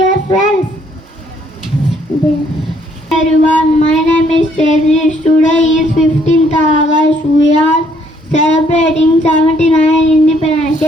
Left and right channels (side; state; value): both; normal; correlation 0.66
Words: friends. Everyone, my name is Cherish. Today is 15th August. We are celebrating 79th Independence